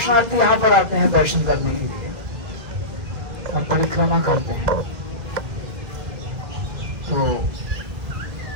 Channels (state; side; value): late; left; 2.0 ms